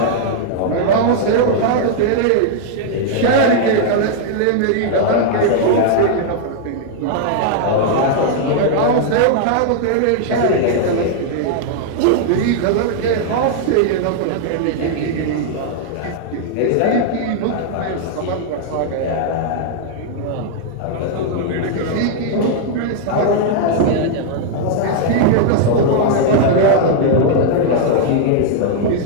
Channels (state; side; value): different; both; correlation -0.01